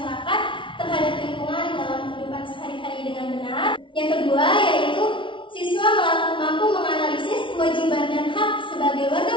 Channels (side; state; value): right; late; 0.25 ms